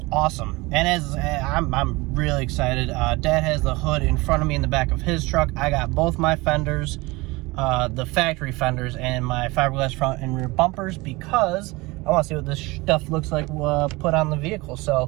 awesome. And I'm really excited. Dad has the hood in front of me in the back of his truck. I got both my fenders, the factory fenders, and my fiberglass front and rear bumpers because I want to see what this stuff looks like put on the vehicle.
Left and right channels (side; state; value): left; quieter; 22.9 dB